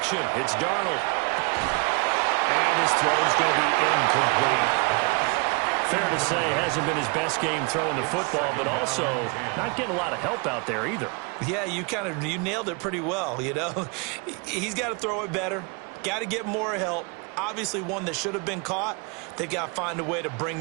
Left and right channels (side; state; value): left; quieter; 31.1 dB